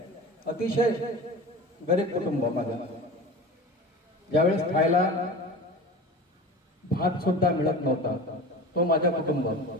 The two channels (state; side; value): normal; both; correlation 0.34